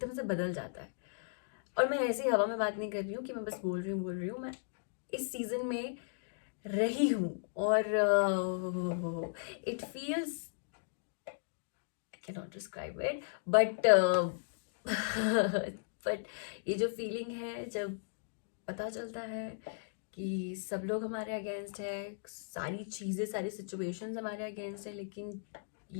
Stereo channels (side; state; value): right; silent; digital silence